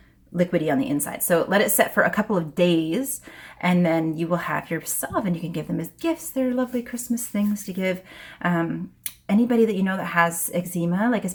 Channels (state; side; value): identical; both; correlation 1.00